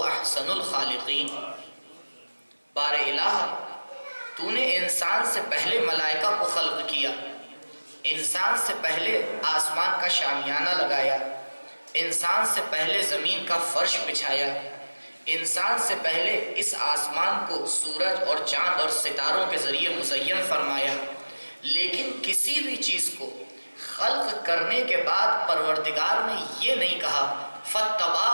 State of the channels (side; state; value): both; inverted; correlation -1.00